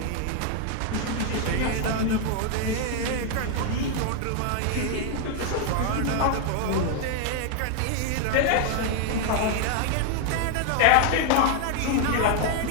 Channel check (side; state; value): both; different; correlation 0.00